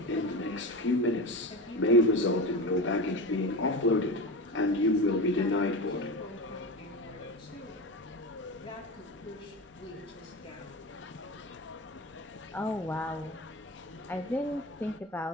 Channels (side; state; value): both; normal; correlation 0.25